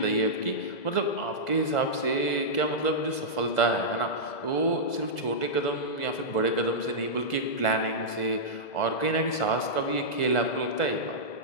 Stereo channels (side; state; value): right; late; 1.5 ms